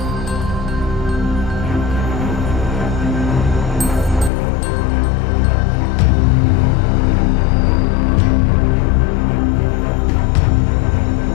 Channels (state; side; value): drops out; right; at 4.3 s